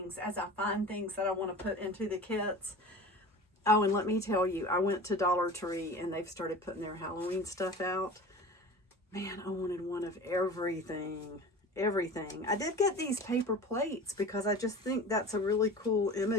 as I find things that I want to put into the kits. Oh, and let me tell you, I went to Dollar Tree and they've started putting their Halloween stuff out. Man, I wanted one of everything. Everything. I did get these paper plates because I just think that's a really cool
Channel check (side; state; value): both; normal; correlation 0.37